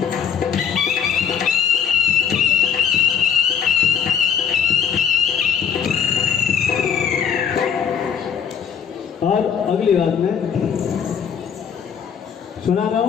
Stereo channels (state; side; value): quieter; right; 7.7 dB